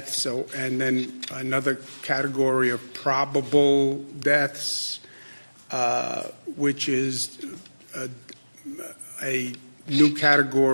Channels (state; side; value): inverted; both; correlation -1.00